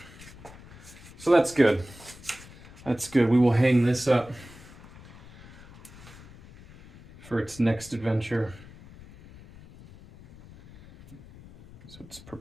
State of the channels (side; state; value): left; noise; rumble, 20 dB below the sound